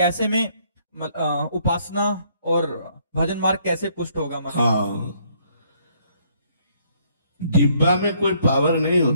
में उपासना और भजन मार्ग कैसे पुष्ट होगा महाराज? हाँ, डिब्बा में कोई पावर नहीं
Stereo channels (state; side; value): inverted; both; correlation -0.67